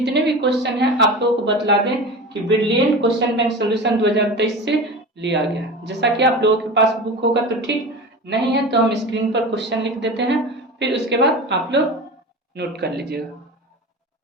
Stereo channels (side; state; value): both; normal; correlation 0.31